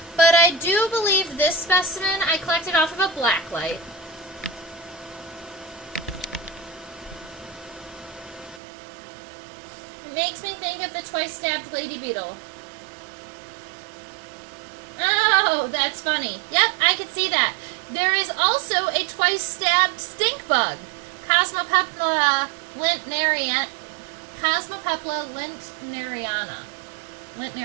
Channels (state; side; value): drops out; left; at 8.6 s